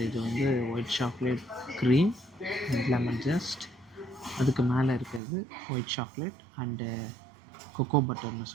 இது வந்து white chocolate cream and lemon just. அதுக்கு மேலே இருக்கிறது ஒயிட் சாக்லேட் அண்டு கொக்கோ பட்டர்னு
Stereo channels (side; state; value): left; drops out; at 5.2 s